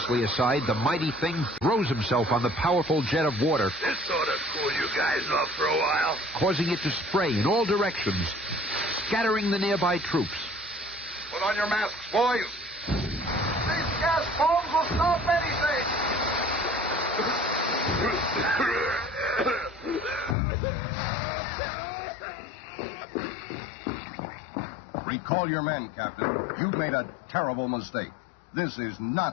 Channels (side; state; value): right; drops out; at 20.4 s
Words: aside, the mighty thing throws himself on the powerful jet of water, This ought to cool you guys off for a while. causing it to spray in all directions, scattering the nearby troops. Put on your masks, boys. These gas bombs will stop anything. Recall your men, Captain. You've made a terrible mistake. This is